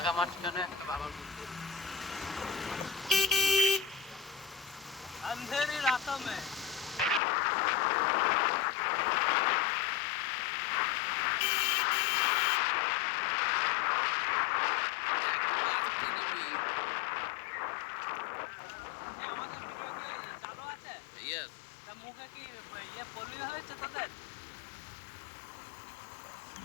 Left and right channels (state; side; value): drops out; right; at 7.2 s